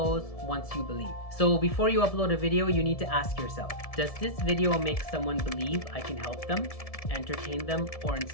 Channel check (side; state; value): right; late; 1.7 ms